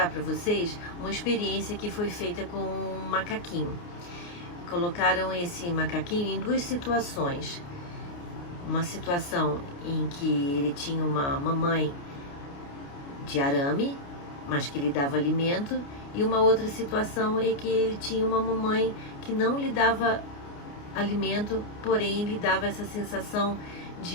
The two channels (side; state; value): right; late; 29 ms